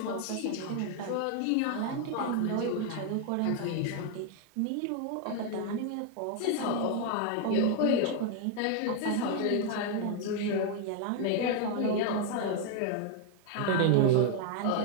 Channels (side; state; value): both; different; correlation 0.00